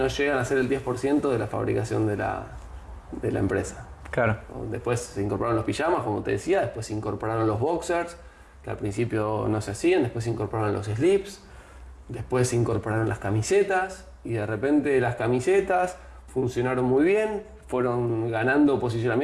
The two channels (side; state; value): both; identical; correlation 1.00